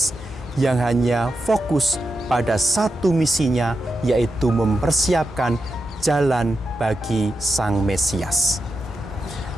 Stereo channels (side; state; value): both; normal; correlation 0.88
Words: yang hanya fokus pada satu misinya, yaitu mempersiapkan jalan bagi Sang Mesias.